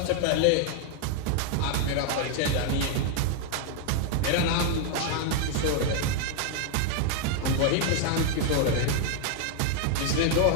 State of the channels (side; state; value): both; different; correlation 0.00